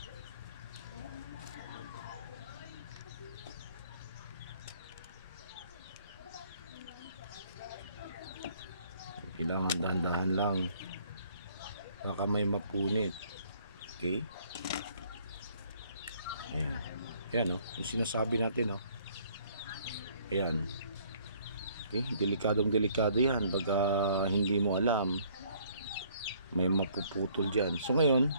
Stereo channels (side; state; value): both; inverted; correlation -0.61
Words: Kailangan dahan-dahan lang, baka may mapunit. Okay, ayan, ayan o, yung sinasabi natin o. Ayan, okay, delikadong delikado yan pag hindi mo alam, may mapuputol dyan. So ngayon,